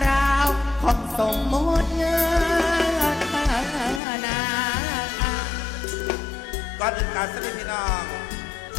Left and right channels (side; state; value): right; drops out; at 4.0 s